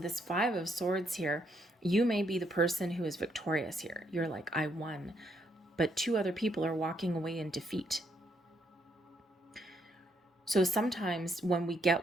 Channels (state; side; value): normal; both; correlation 0.74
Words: Five of Swords here, you may be the person who is victorious here. You're like, I won. But two other people are walking away in defeat. So sometimes when we